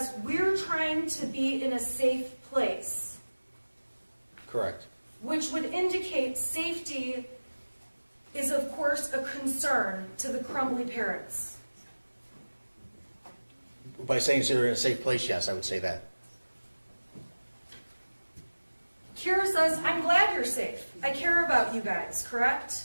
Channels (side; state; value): both; inverted; correlation -1.00